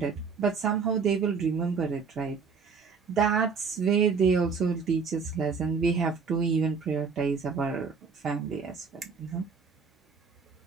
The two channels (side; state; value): left; quieter; 5.4 dB